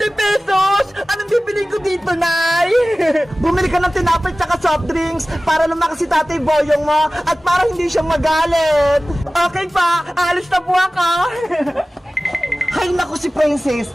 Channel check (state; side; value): normal; both; correlation 0.97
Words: pesos! Anong bibili ko dito, Nay? Bumili ka ng tinapay tsaka soft drinks para lumakas si Tatay Boyong mo at para hindi siya magalit. Okay pa, alis na po ako. Hay naku si Princess,